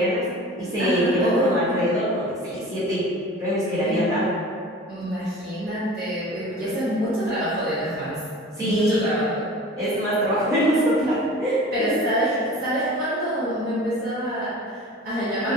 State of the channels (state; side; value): normal; both; correlation 0.40